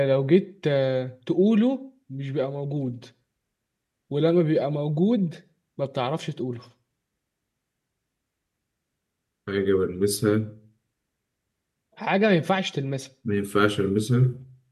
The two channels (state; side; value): identical; both; correlation 1.00